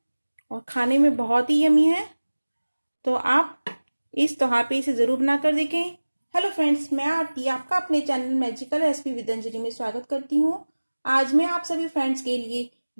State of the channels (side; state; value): both; inverted; correlation -1.00